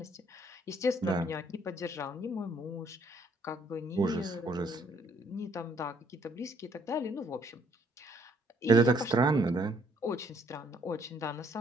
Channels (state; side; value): normal; both; correlation 0.66